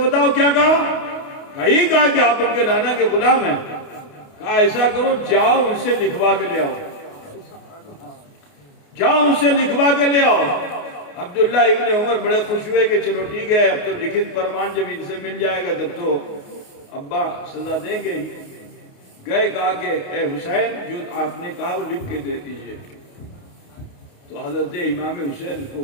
کیا کہا؟ کہا یہ کہا کہ آپ ان کے نانا کے غلام ہیں۔ کہا ایسا کرو، جاؤ ان سے لکھوا کے لے آؤ، جاؤ ان سے لکھوا کے لے آؤ۔ عبداللہ ابن عمر بڑے خوش ہوئے کہ چلو ٹھیک ہے، اب تو لکھت فرمان جب ان سے مل جائے گا تب تو ابا سزا دیں گے ہی۔ گئے، کہا کہ اے حسین جو آپ نے کہا وہ لکھ کے دے دیجئے۔ تو حضرت امام حسین کو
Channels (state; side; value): late; right; 28 ms